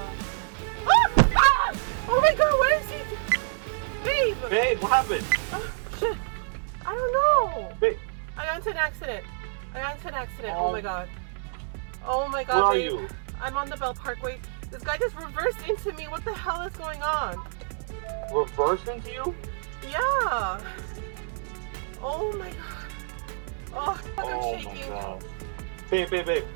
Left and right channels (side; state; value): left; silent; digital silence